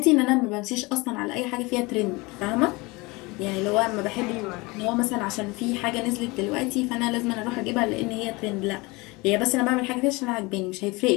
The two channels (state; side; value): quieter; right; 24.4 dB